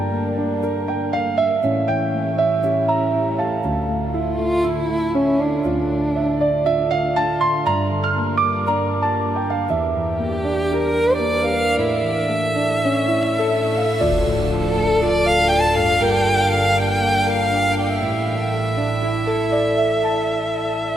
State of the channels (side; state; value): both; normal; correlation 0.83